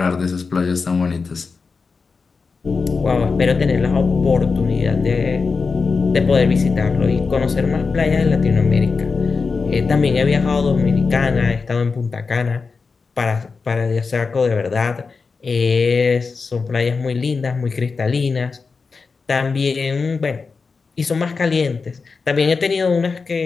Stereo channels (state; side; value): quieter; right; 4.7 dB